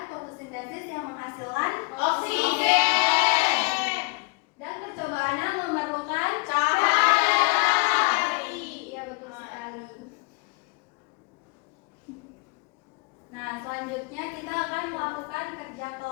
fotosintesis yang menghasilkan Oksigen. dan percobaannya memerlukan Cahaya. Iya, betul sekali. Nah, selanjutnya kita akan melakukan kerja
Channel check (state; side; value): quieter; right; 27.4 dB